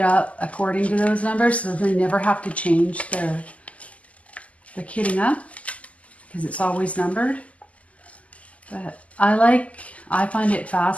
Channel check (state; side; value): late; right; 0.068 ms